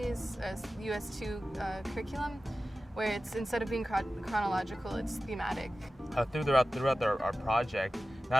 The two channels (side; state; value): both; normal; correlation 0.95